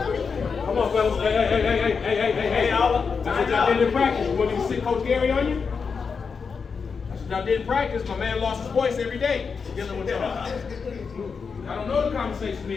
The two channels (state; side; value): quieter; right; 5.5 dB